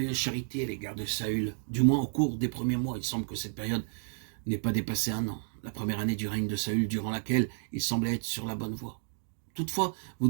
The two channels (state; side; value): silent; left; 57 dB below the other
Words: charité à l'égard de Saül, du moins au cours des premiers mois. Il semble que cette période n'ait pas dépassé 1 an, la première année du règne de Saül, durant laquelle il semblait être sur la bonne voie. Toutefois, vous